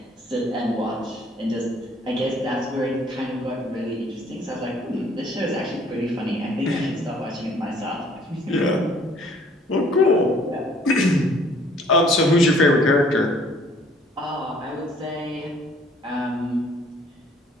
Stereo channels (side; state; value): both; normal; correlation 0.58